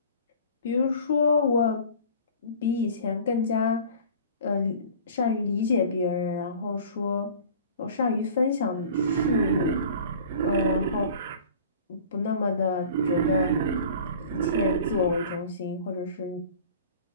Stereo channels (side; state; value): both; inverted; correlation -0.43